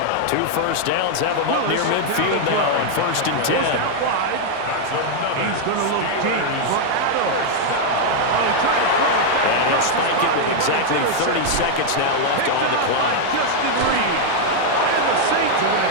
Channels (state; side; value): different; both; correlation 0.00